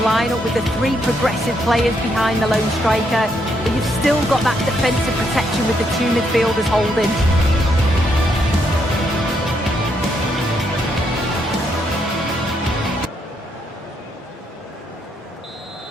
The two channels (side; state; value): both; normal; correlation 0.76